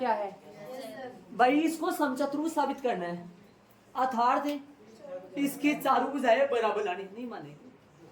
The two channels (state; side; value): identical; both; correlation 1.00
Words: है भाई, इसको समचतुर्भुज साबित करना है। अर्थात इसकी चारों भुजाएं बराबर लानी, नहीं माने